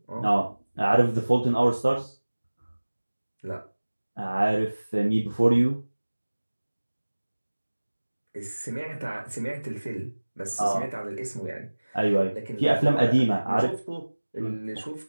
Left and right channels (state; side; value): inverted; both; correlation -1.00